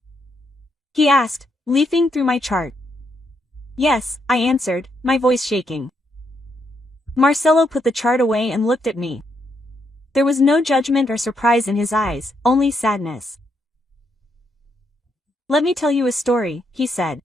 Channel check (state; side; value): normal; both; correlation 0.78